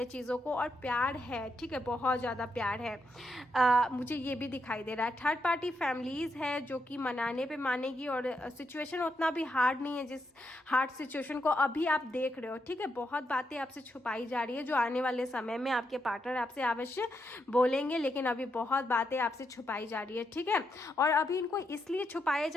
चीज़ों को, और प्यार है, ठीक है, बहुत ज़्यादा प्यार है। मुझे ये भी दिखाई दे रहा है। थर्ड पार्टी फैमिलीज़ है जो कि मनाने पे मानेगी, और सिचुएशन उतना भी हार्ड नहीं है जिस हार्ड सिचुएशन को अभी आप देख रहे हो, ठीक है। बहुत बातें आपसे छुपाई जा रही है जो आने वाले समय में आपके पार्टनर आपसे अवश्य बोलेंगे, लेकिन अभी बहुत बातें आपसे छुपाई जा रही है, ठीक है। और अभी इनको इसलिए छुपाया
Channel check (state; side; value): normal; both; correlation 0.81